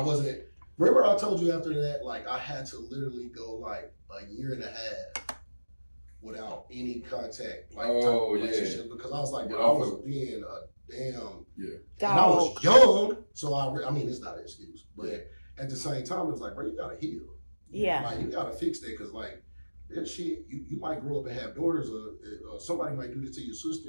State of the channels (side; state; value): both; inverted; correlation -1.00